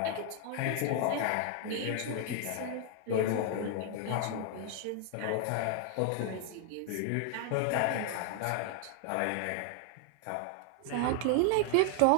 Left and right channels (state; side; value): different; both; correlation 0.00